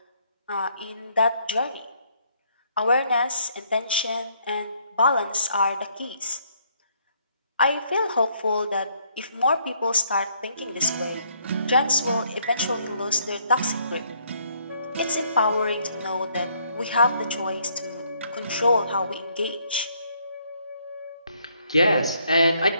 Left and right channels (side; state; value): both; inverted; correlation -0.69